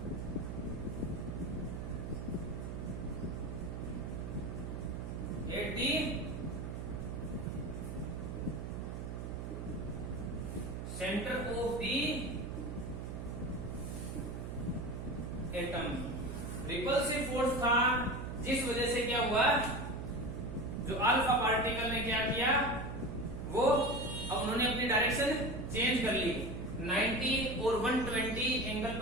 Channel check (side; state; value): right; noise; hum, 6 dB below the sound